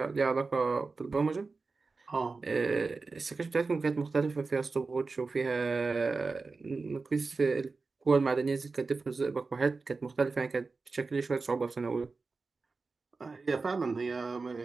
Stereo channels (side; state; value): left; quieter; 4.1 dB